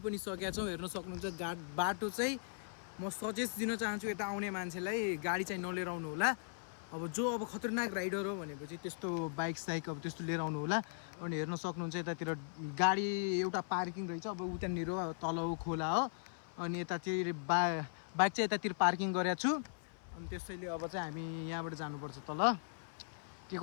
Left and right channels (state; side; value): silent; right; 52 dB below the other